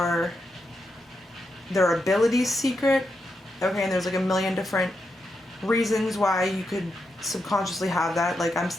their abilities secret. Okay, and there's like a million different reasons why you could subconsciously have that. Like I'm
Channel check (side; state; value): both; normal; correlation 0.85